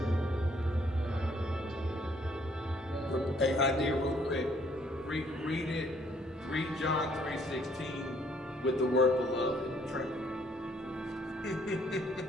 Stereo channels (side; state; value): both; normal; correlation 0.64